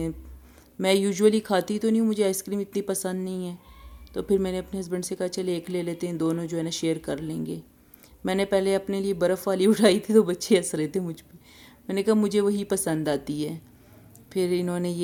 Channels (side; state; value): both; identical; correlation 1.00